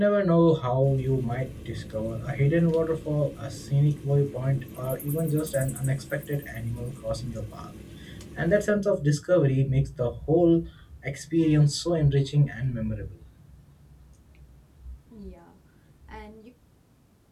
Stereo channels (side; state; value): both; identical; correlation 1.00